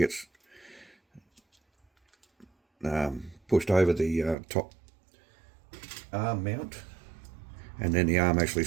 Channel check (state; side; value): drops out; left; at 4.4 s